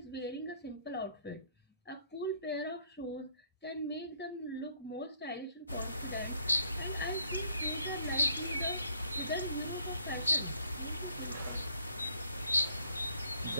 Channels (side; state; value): both; inverted; correlation -0.65